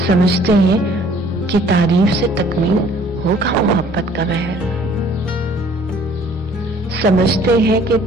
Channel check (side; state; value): both; normal; correlation 0.56